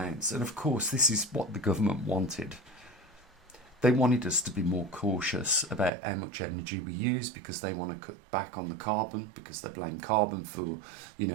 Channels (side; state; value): left; drops out; at 5.9 s